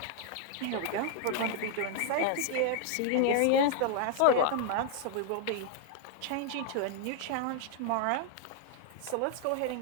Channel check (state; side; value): different; both; correlation 0.00